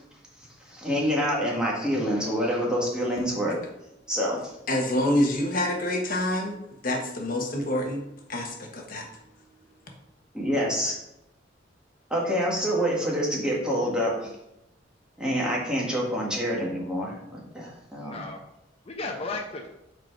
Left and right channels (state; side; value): normal; both; correlation 0.45